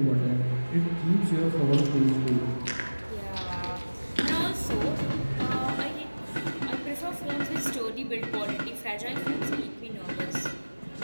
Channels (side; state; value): both; inverted; correlation -1.00